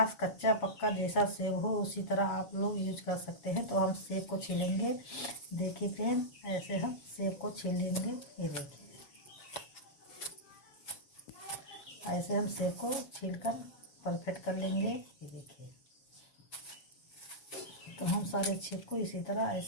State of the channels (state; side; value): late; right; 7.0 ms